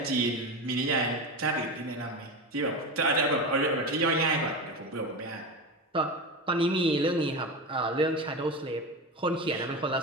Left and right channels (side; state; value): both; normal; correlation 0.23